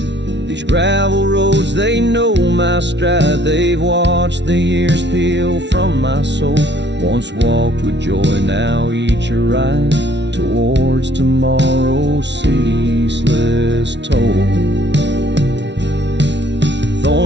These gravel roads, they know my stride. They've watched the years peel from my soul. Once walked with joy, now each a ride towards tomorrow's ceaseless toll.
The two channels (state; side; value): late; left; 0.51 ms